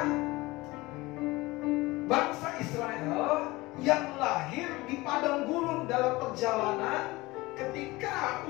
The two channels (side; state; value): right; quieter; 21.1 dB